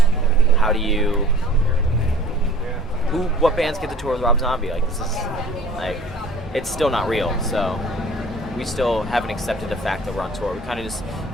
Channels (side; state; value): both; normal; correlation 0.48